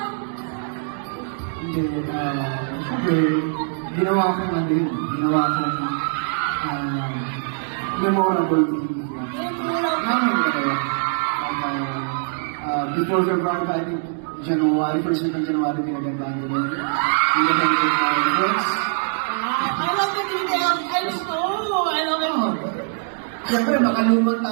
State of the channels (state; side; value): silent; left; digital silence